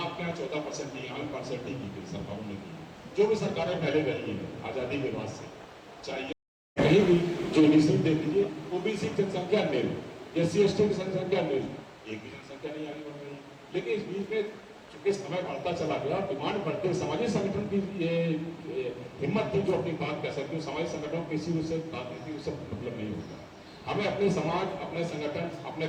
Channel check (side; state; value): both; identical; correlation 1.00